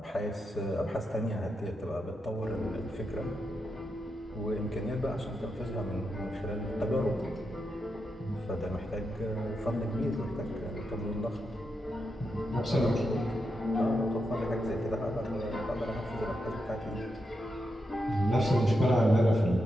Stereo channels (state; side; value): normal; both; correlation 0.85